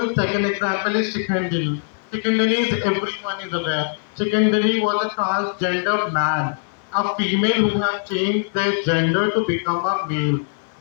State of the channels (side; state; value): right; silent; digital silence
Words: Second example is Shikhandini. Shikhandini is everyone is aware. Shikhandini was a transgender man, a female who have changed their gender to become a male.